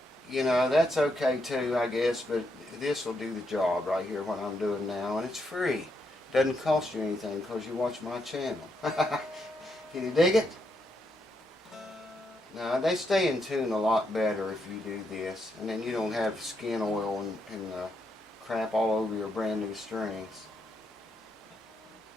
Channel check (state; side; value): normal; both; correlation 0.79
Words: You know, that's okay too, I guess, but this will do the job right here, what I'm doing now, and it's free. Doesn't cost you anything because you watch my channel. Can you dig it? Now, they stay in tune a lot better if you do this, and then you don't have skin oil and crap all over your brand new strings.